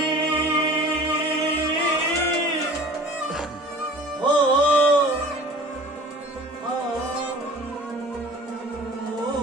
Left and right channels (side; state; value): both; normal; correlation 0.44